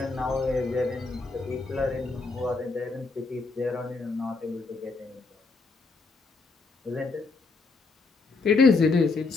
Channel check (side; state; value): right; quieter; 4.0 dB